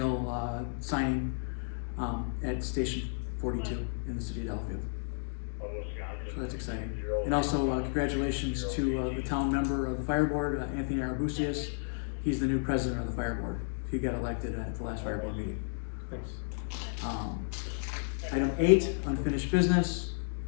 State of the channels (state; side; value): silent; right; digital silence